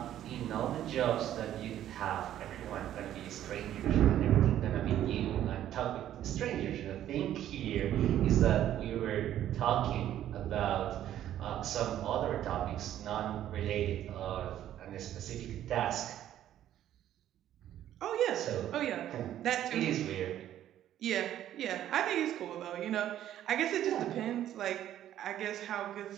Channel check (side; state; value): left; quieter; 11.8 dB